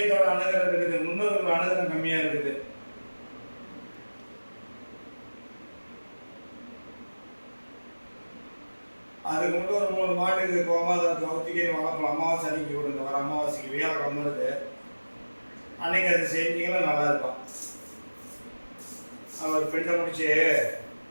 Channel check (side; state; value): both; inverted; correlation -1.00